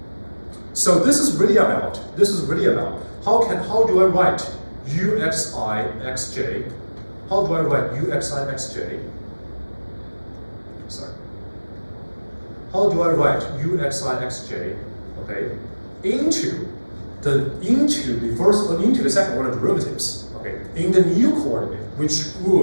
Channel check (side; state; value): both; inverted; correlation -1.00